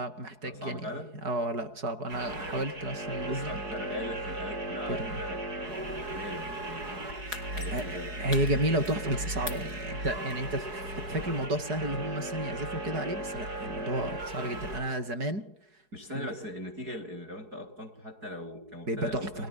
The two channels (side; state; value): left; late; 4.7 ms